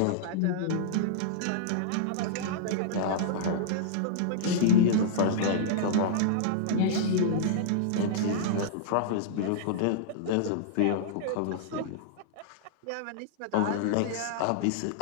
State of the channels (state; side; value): different; both; correlation -0.02